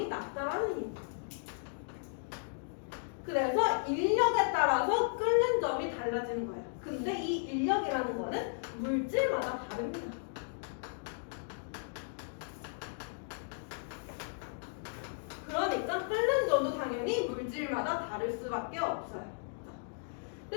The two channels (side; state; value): right; silent; digital silence